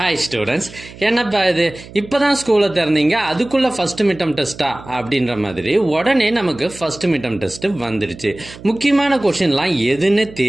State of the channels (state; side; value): noise; right; hum, 17 dB below the sound